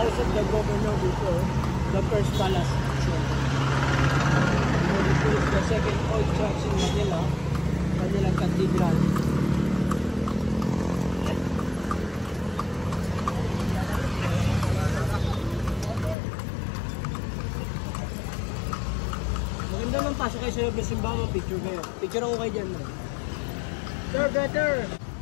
of the governor before, the first palace. This is the second old church in Manila, Manila Cathedral. Maganda man pasok kayo sa loob ng simbahan, picture kayo. Picture ako kayo dyan. Sir, better!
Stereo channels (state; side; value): drops out; right; at 16.2 s